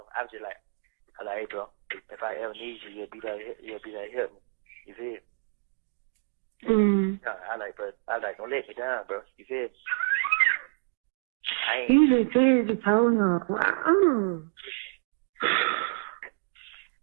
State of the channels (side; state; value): left; silent; digital silence